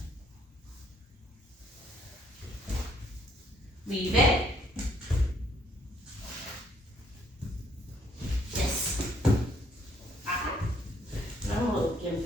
Leave it. Yes. Ah. I'm a little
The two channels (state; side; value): normal; both; correlation 0.66